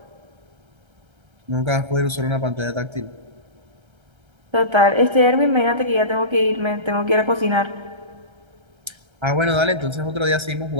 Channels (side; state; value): left; late; 1.3 ms